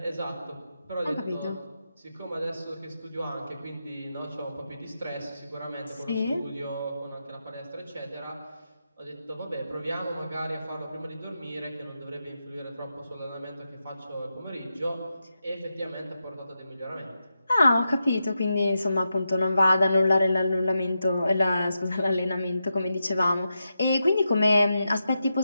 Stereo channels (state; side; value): inverted; both; correlation -0.88